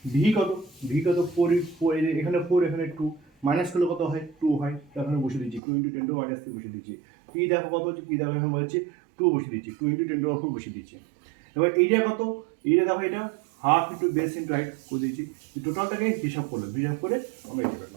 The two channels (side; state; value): left; drops out; at 5.6 s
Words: ভি কত? ভি কত? 4, এখানে 4 এখানে 2, মাইনাস করলে কত হয়? 2 হয়। তো এখানে বসে দিচ্ছি 2 × 10 - 3 বসে দিচ্ছি। পি দেখো কত হচ্ছে? পি দেখো এখানে বলছে 2 বসে দিচ্ছি, 2 × 10 - 4 বসে দিচ্ছি। এবার এইটা কত? এইটা দেখো এটা half into base into height করে দিয়েছি। টোটালটাকে হিসাব করলো, হিসাব করে আমরা এটা